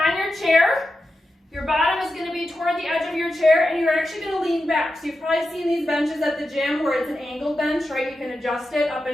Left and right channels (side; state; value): both; normal; correlation 0.90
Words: your chair. Your bottom is gonna be toward the edge of your chair, and you're actually gonna lean back. So you've probably seen these benches at the gym where it's an angled bench, right? You can adjust it up